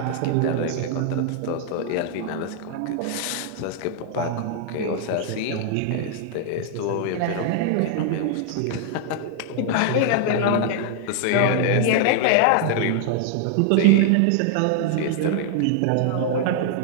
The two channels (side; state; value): both; different; correlation 0.00